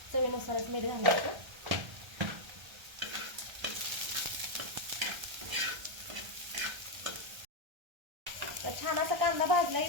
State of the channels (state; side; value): late; left; 1.3 ms